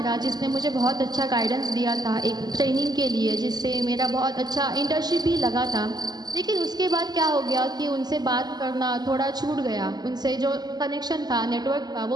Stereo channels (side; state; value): left; late; 0.20 ms